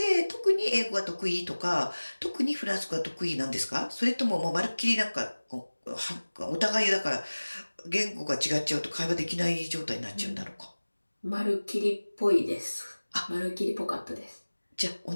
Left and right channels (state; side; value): inverted; both; correlation -1.00